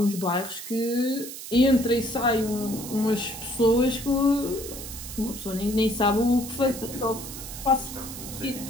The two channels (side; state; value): right; noise; hiss, 10 dB below the sound